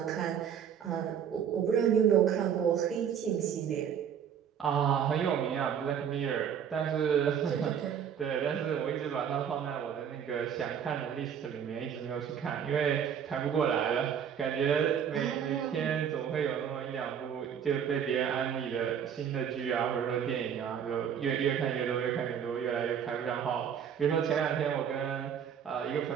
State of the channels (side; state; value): left; quieter; 8.3 dB